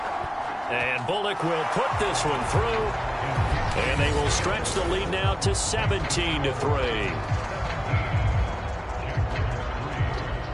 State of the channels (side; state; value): both; identical; correlation 1.00